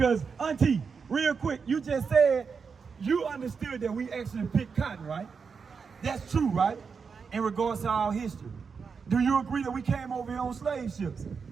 Auntie, real quick, you just said you understood that we actually picked cotton, right? That's true, right? In regards to our history. Do you agree that we came over here on slave ships?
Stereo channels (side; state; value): left; quieter; 5.6 dB